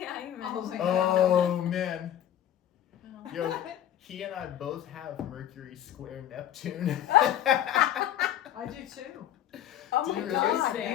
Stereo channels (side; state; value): right; quieter; 11.1 dB